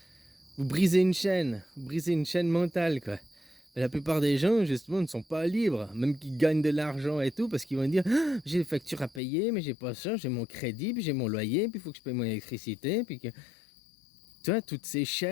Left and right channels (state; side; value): drops out; right; at 9.2 s